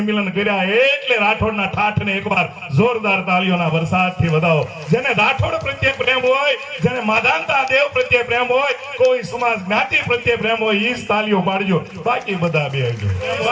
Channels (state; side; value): identical; both; correlation 1.00